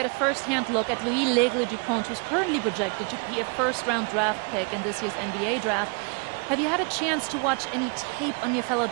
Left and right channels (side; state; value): left; quieter; 36.0 dB